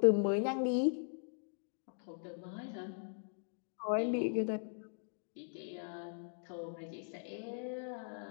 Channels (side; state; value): right; silent; digital silence